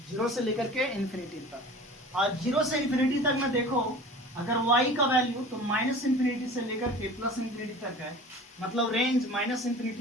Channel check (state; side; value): normal; both; correlation 0.40